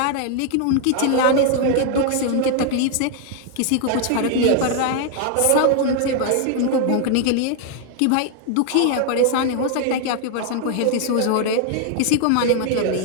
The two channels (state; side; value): different; both; correlation 0.00